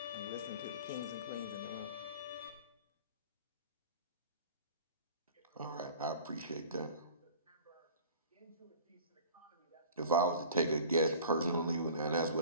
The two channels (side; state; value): both; inverted; correlation -0.43